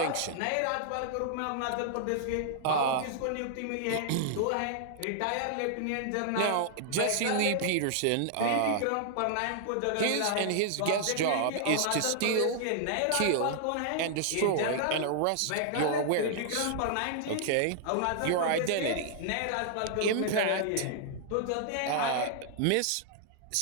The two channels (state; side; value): different; both; correlation 0.00